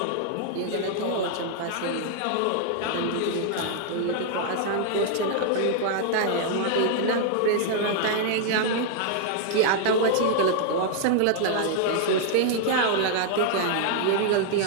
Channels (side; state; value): both; different; correlation 0.00